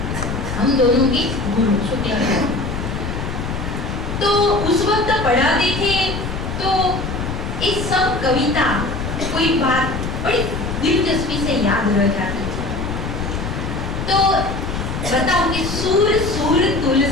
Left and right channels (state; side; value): noise; left; rumble, 4 dB below the sound